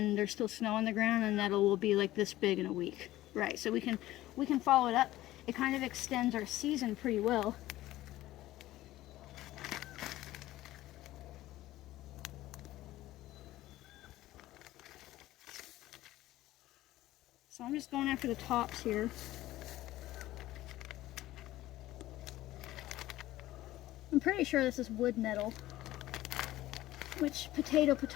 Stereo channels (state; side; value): quieter; right; 15.8 dB